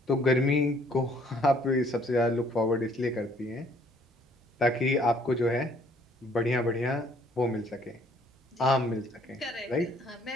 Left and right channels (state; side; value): normal; both; correlation 0.62